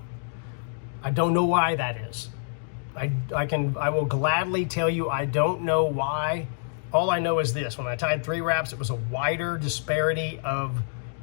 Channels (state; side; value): silent; right; digital silence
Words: I don't know why that is. I will gladly tell you I don't know why. All I know is this: when I tied 3 wraps, it was a wider disparity of